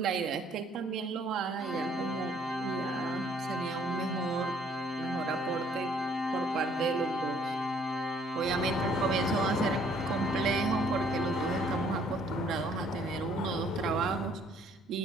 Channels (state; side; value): normal; both; correlation 0.62